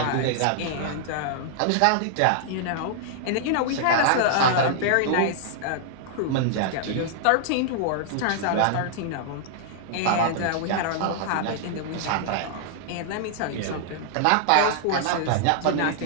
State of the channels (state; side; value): different; both; correlation -0.01